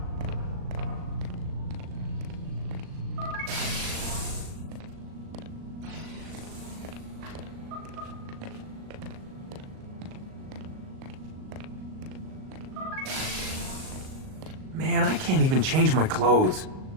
Man, I can't even change my clothes.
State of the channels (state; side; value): late; left; 38 ms